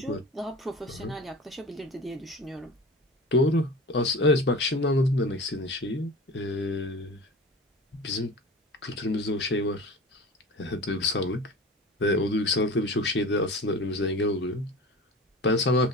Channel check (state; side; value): normal; both; correlation 0.35